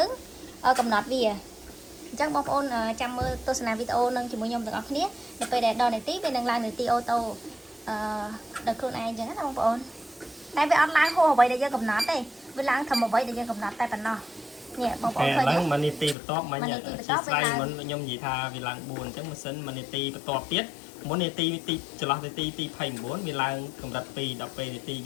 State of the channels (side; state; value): right; drops out; at 16.2 s